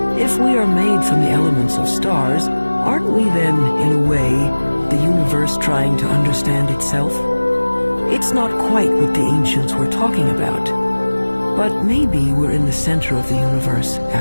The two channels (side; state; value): both; inverted; correlation -1.00